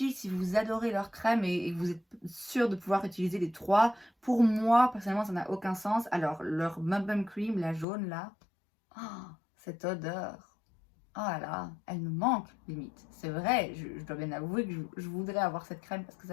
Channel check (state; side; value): drops out; right; at 7.9 s